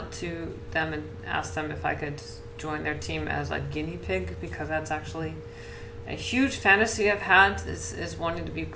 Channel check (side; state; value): both; identical; correlation 1.00